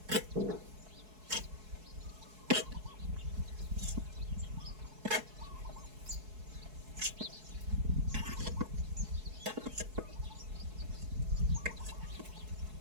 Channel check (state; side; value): late; left; 4.7 ms